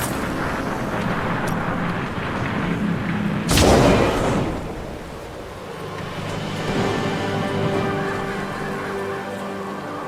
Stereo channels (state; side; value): identical; both; correlation 1.00